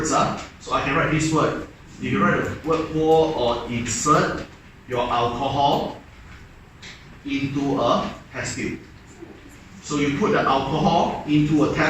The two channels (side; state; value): both; identical; correlation 1.00